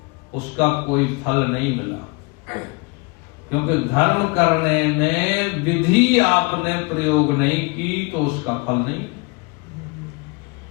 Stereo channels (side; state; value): right; quieter; 29.3 dB